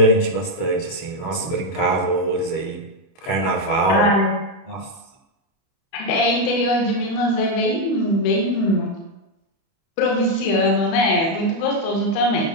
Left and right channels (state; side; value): late; right; 30 ms